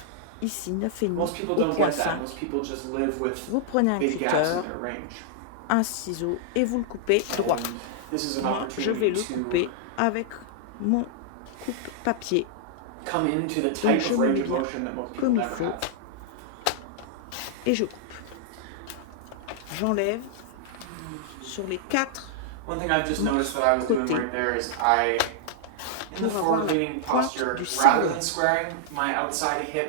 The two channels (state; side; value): different; both; correlation -0.01